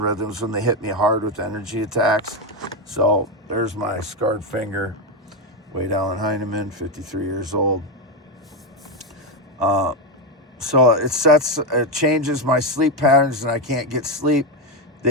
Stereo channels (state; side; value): normal; both; correlation 0.09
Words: rhythms when they hit me hard with energy attacks. So there's my scarred finger. Wade Allen Heineman, 53 years old. So it changes my sleep patterns, and I can't get sleep.